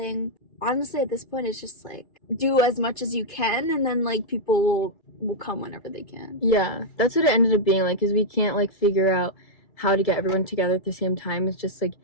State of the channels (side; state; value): right; late; 2.3 ms